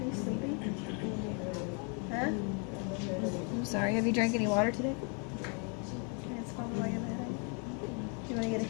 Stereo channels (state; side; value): quieter; right; 37.2 dB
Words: you sleepy? Huh? I'm sorry. Have you drank any water today? Okay, it's probably why you have a headache. Do you want to get a